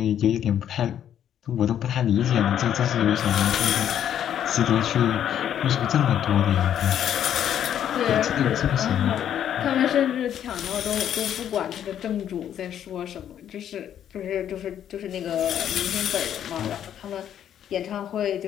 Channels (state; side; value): quieter; right; 10.0 dB